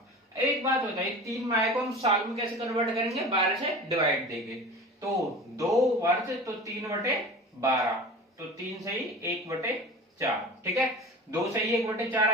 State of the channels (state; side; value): normal; both; correlation 0.36